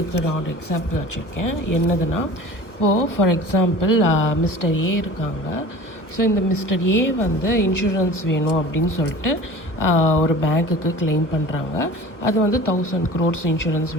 நான் ஒரு எக்ஸாம்பிள் வச்சுருக்கேன். என்னதுன்னா, இப்போது ஃபார் எக்ஸாம்பிள் மிஸ்டர் ஏ இருக்காங்க. ஸோ இந்த மிஸ்டர் ஏ இன்சூரன்ஸ் வேணும் அப்படின்னு சொல்லிட்டு ஒரு பேங்க்குக்கு கிளைம் பண்ணுறாங்க. அது 1000 crores இன்சூரன்ஸ்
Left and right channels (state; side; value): late; right; 1.3 ms